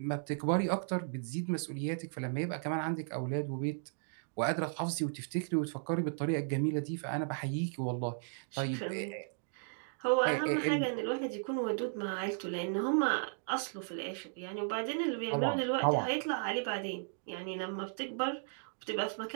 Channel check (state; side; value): silent; left; digital silence